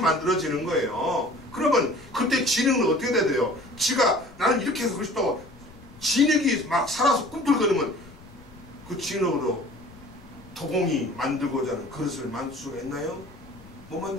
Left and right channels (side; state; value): left; noise; rumble, 21 dB below the sound